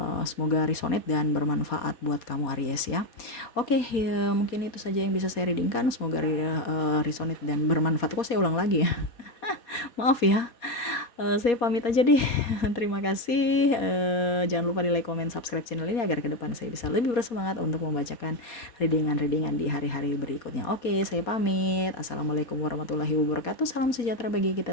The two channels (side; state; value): right; late; 4.2 ms